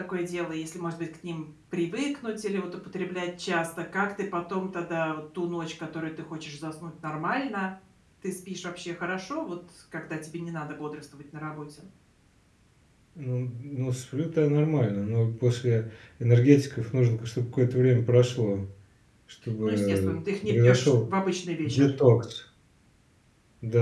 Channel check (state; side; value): identical; both; correlation 1.00